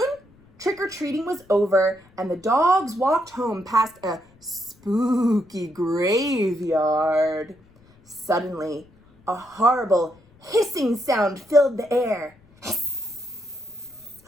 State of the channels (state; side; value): noise; left; rumble, 29 dB below the sound